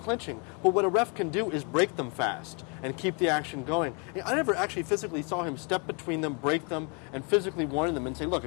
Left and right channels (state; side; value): quieter; right; 34.8 dB